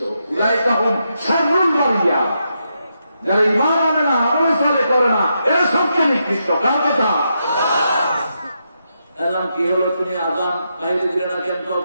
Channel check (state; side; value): inverted; both; correlation -0.83